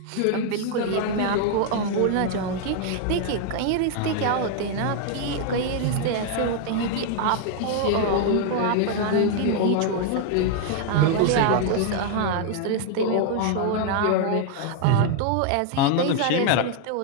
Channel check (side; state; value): both; different; correlation 0.00